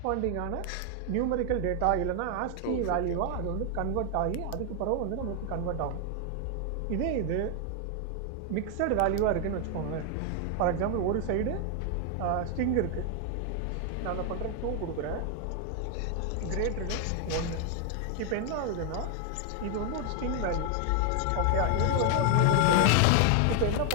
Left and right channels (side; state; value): both; different; correlation 0.00